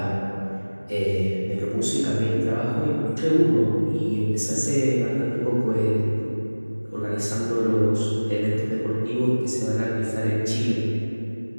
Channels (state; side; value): inverted; both; correlation -1.00